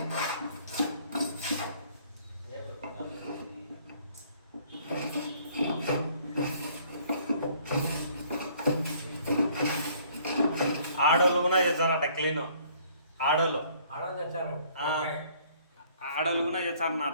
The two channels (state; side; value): inverted; both; correlation -0.59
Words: ఆడోళ్ళు కూడా చేస్తారట క్లీన్. ఆడోళ్ళు తెచ్చారు. ఆడోళ్ళు కూడా